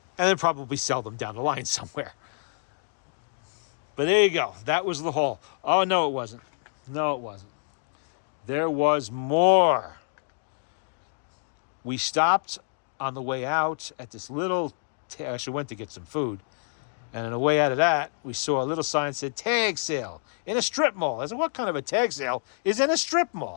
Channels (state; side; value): silent; right; digital silence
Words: And then probably sell them down the line somewhere. But there you go. That was the haul. Oh, no, it wasn't. No, it wasn't. There was more. We stopped on the way out at this little, actually went to get some food. And on the way out of that, we saw a little sign that said tag sale in a strip mall. I said, what kind of a tag sale is in a strip